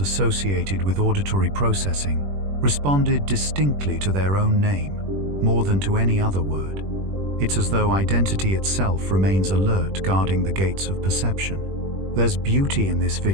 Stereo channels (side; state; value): left; late; 21 ms